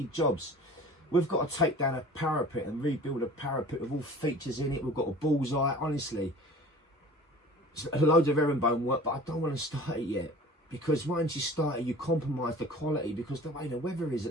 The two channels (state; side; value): normal; both; correlation 0.43